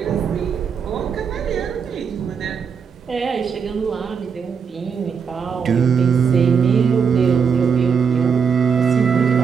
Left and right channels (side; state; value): left; quieter; 6.4 dB